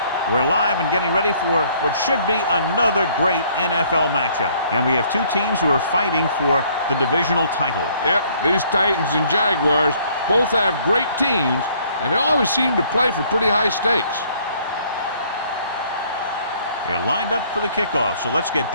We're live and getting ready for what should be another great NFL matchup. And we have two teams who are fighting for the divisional title. Yep, these Titans and Jaguars both have great teams, and they always seem to play for pretty high stakes. They're lined up for the kickoff, so let's get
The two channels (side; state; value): both; inverted; correlation -0.61